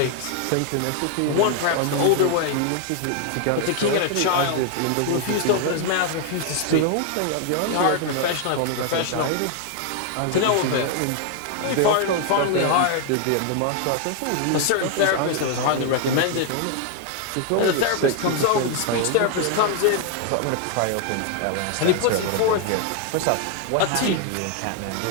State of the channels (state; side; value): different; both; correlation 0.00